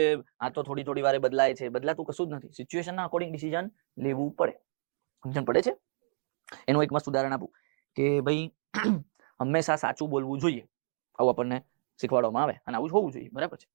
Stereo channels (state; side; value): silent; left; digital silence